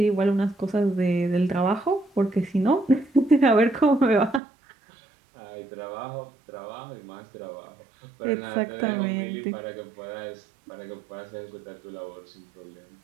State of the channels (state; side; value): drops out; left; at 4.4 s